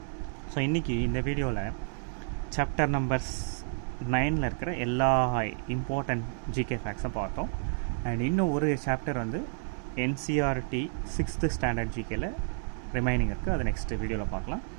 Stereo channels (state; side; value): silent; left; 58 dB below the other